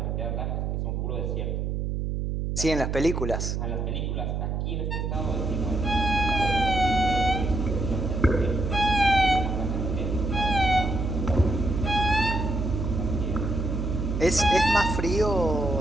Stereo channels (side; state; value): right; noise; hum, 1 dB below the sound